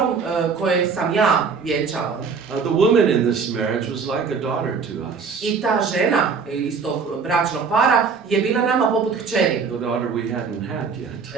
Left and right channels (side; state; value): left; quieter; 5.4 dB